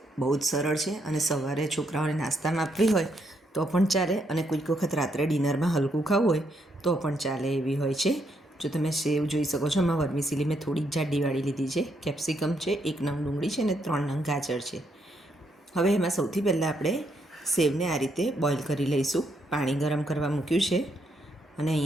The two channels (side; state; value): both; normal; correlation 0.76